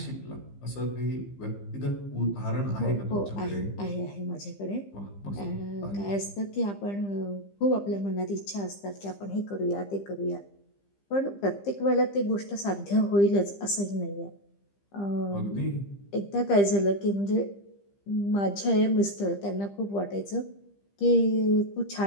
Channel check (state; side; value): late; right; 15 ms